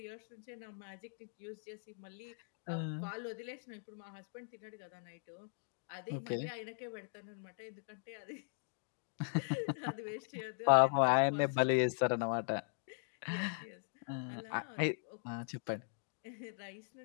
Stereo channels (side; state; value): right; silent; digital silence